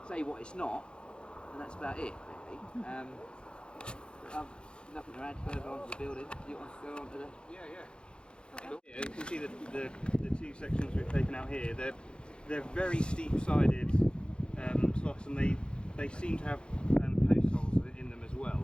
say what it's not, and that's about it, really. Nothing to add further onto the building. Do you want to go on to the... Yeah. Yeah, you can see the 2 sections we've taken out here. they're very steep-sided slots, and they seem to have post holes in them as well.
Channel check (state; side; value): late; right; 0.053 ms